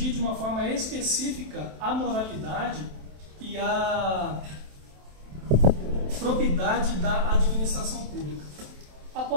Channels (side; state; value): left; late; 27 ms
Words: de uma forma específica a moralidade e a probidade da administração pública.